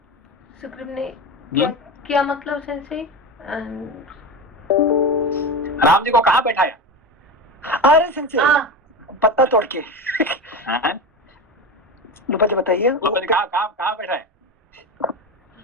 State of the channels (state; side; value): normal; both; correlation 0.22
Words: सुग्रीव ने क्या मतलब संजय? राम जी को कहाँ बैठाया? अरे संजय, पत्ता तोड़ के। लोपा जी बताइए, कहाँ बैठाया?